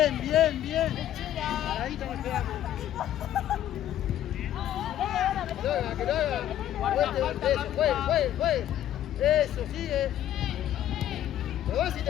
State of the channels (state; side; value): quieter; right; 11.8 dB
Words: bien, bien. Paradito nos quedamos. Que lo haga, que lo haga. Eso, juegue. Eso, sigue. Lo vas si